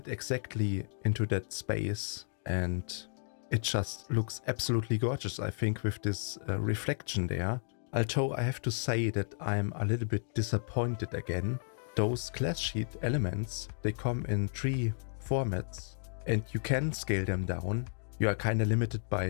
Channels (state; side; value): silent; right; digital silence